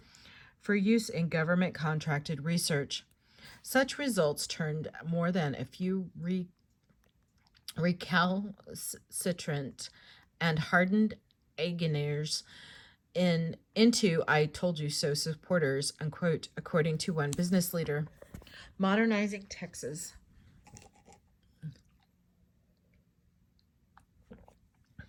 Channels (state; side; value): identical; both; correlation 1.00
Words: for use in government contracted research. Such results turned more than a few recalcitrant and hardened Againers into "I told you so" supporters, unquote, according to one business leader. Modernizing Texas.